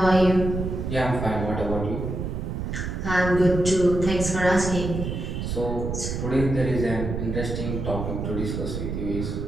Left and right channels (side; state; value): right; noise; rumble, 4 dB below the sound